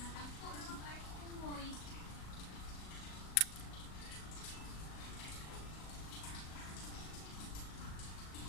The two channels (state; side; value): late; right; 38 ms